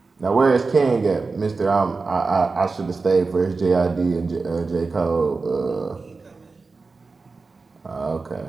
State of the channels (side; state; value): left; quieter; 4.1 dB